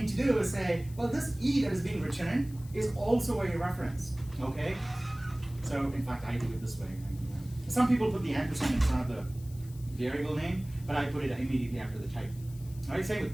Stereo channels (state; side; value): noise; left; hiss, 22 dB below the sound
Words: to do is say, well, this E that is being returned is also a reference. Okay. So in fact, I do it this way. Some people put the ampersand in front of the variable name, but I put it immediately after the type. I say with